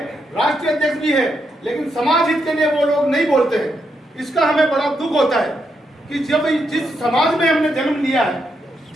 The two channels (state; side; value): normal; both; correlation 0.80